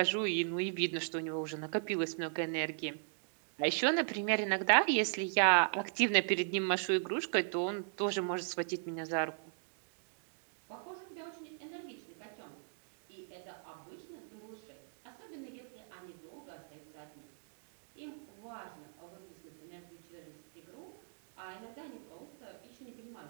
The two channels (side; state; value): left; silent; digital silence